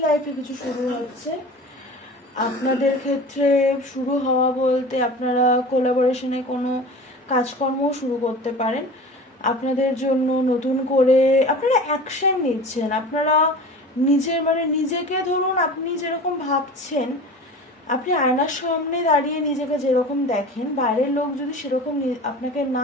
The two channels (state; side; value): normal; both; correlation 0.36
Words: লাইফে কিছু শুরু হচ্ছে। আপনাদের ক্ষেত্রে শুরু হওয়া বলতে আপনারা কোলাবোরেশনে কোনো কাজকর্ম শুরু করতে পারেন। আপনাদের জন্য নতুন করে আপনারা অ্যাকশন নিচ্ছেন, আপনারা নিজেকে ধরুন, আপনি যেরকম ভাবছেন, আপনি আয়নার সামনে দাঁড়িয়ে নিজেকে যেরকম দেখেন, বাইরের লোক যদি সেরকম আপনাকে